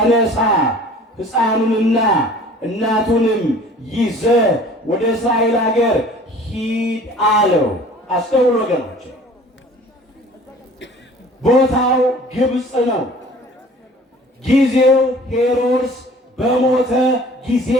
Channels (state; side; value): normal; both; correlation 0.48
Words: ሕፃኑንና እናቱንም ይዘህ ወደ እስራኤል ሀገር ሂድ አለው። አስተውሉ ወገኖች፣ ቦታው ግብፅ ነው። ጊዜው ሄሮድስ በሞተ ጊዜ